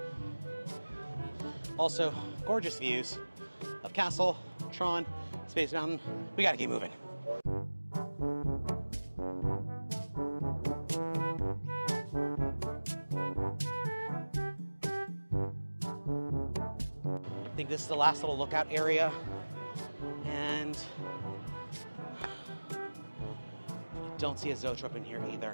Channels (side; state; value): both; inverted; correlation -1.00